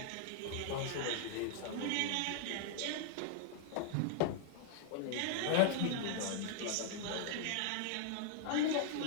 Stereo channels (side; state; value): both; different; correlation -0.01